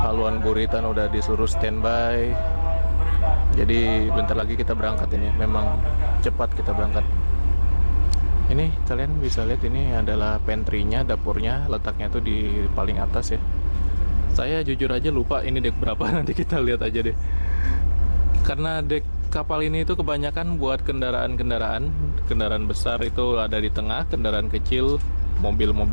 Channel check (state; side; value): inverted; both; correlation -1.00